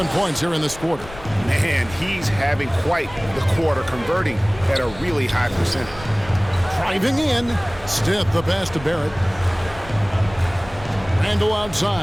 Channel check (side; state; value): left; noise; rumble, 17 dB below the sound